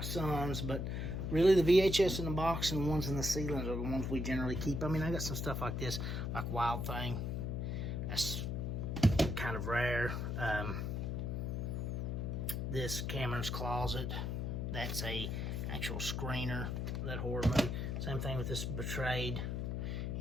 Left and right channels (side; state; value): left; noise; hum, 1 dB below the sound